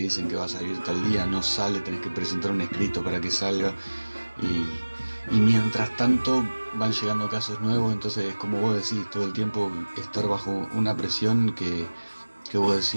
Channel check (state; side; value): inverted; both; correlation -1.00